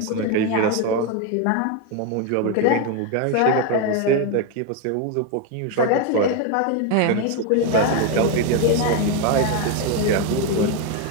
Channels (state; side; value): different; both; correlation 0.02